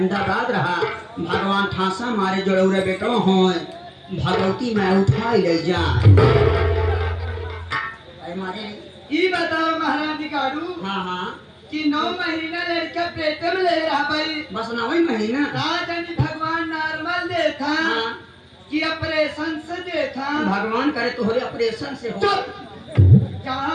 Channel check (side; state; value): both; identical; correlation 1.00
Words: रहा, भगवान ठासा मारे जोड़ौरे बेटो हो भगवती मैं उठाई ले जा मारे। ये बताओ महाराज दिकाड़ू हाँ हाँ कि 9 महीना लड़का पेट में ले रहा भाई, बस 9 महीना राजनी भगवान नॉर्मल देखा हाँ। कि ऑपरेशन से देखा। भगवान करे तोहरे ऑपरेशन से हो।